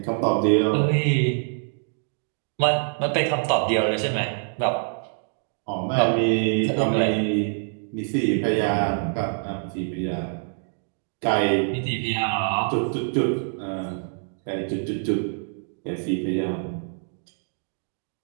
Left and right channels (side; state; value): left; silent; 62 dB below the other